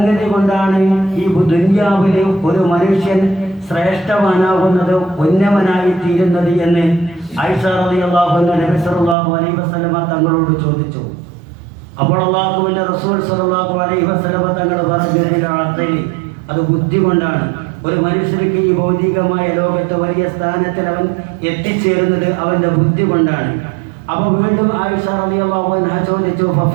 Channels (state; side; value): drops out; left; at 9.2 s